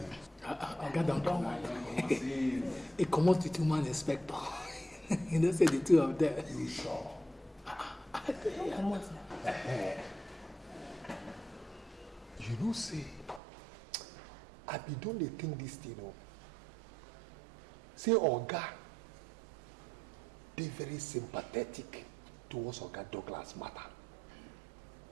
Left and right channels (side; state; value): left; drops out; at 13.4 s